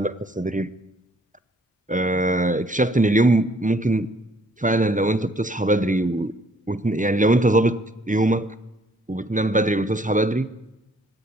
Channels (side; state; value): both; normal; correlation 0.62